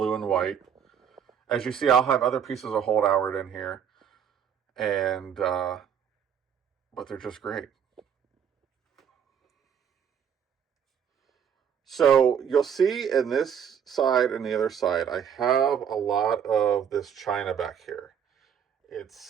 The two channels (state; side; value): quieter; left; 8.1 dB